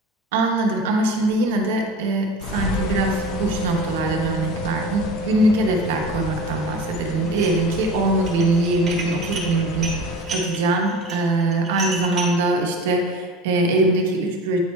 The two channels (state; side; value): normal; both; correlation 0.36